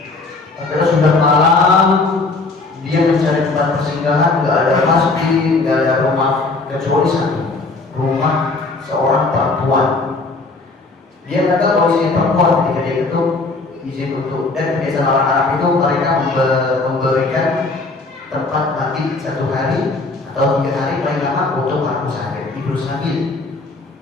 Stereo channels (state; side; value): quieter; right; 3.6 dB